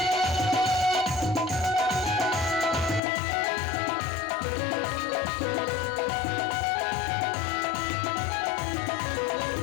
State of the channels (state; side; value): drops out; right; at 3.0 s